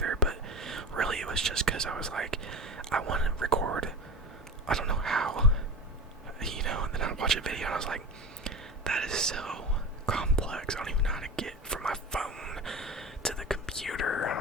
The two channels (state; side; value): normal; both; correlation 0.30